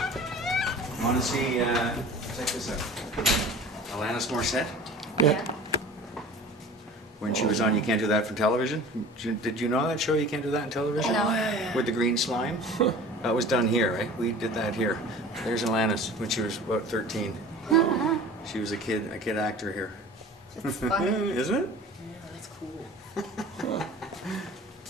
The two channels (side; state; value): both; normal; correlation 0.41